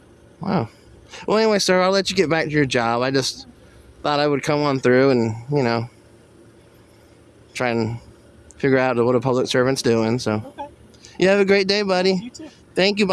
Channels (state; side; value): identical; both; correlation 1.00